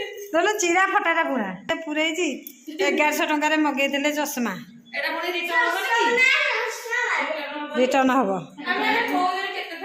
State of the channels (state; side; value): identical; both; correlation 1.00